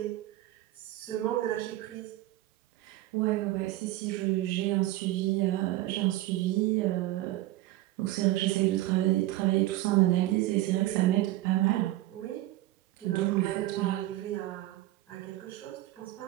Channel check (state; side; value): quieter; left; 16.4 dB